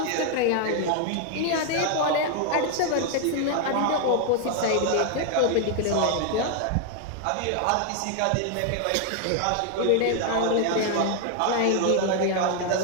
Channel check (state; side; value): different; both; correlation 0.00